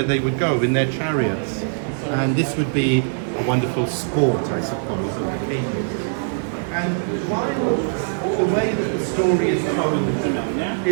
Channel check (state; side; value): silent; left; 64 dB below the other